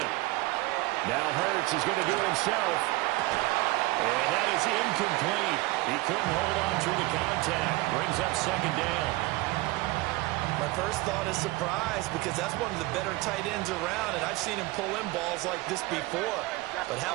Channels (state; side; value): quieter; left; 20.8 dB